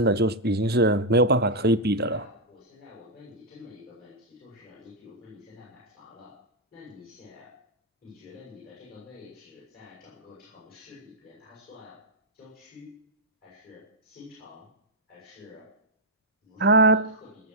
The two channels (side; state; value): both; normal; correlation -0.02